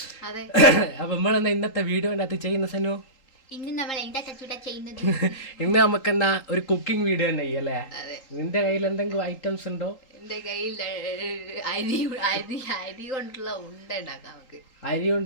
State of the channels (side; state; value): right; late; 3.8 ms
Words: അപ്പൊ നമ്മളെന്താ ഇന്നത്തെ വീഡിയോൻ്റെ അകത്ത് ചെയ്യുന്ന സനു? ഇന്ന് നമുക്കെന്നാ ഒരു കുക്കിംഗ് വീഡിയോ തന്നെ ചെയ്യല്ലേ? നിന്റെ കയ്യിൽ എന്തെങ്കിലും ഐറ്റംസ് ഉണ്ടോ? എന്റെ കയ്യിൽ അരി കൊണ്ടുള്ള